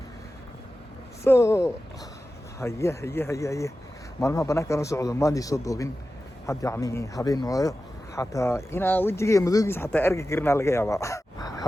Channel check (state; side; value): normal; both; correlation 0.93